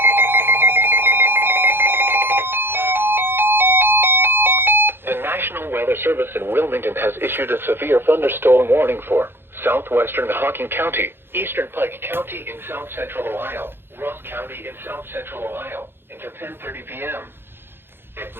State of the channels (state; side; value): late; left; 0.11 ms